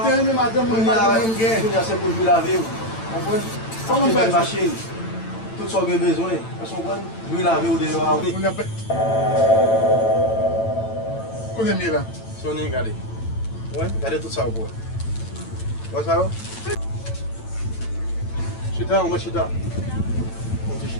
Quand il est madame, moi, madame, gain. Il y a c'est pour jouer la vie. On prend Comment on fait une machine. Tout ce qu'on a besoin. Parce qu'on prend jouer la vie au dehors. On a pas. Qu'on est mieux là. Sony, regardez. Ouais, regardez tout ça au bout. Voilà ça. Chita, on va chita. On dit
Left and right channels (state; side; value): late; right; 9.0 ms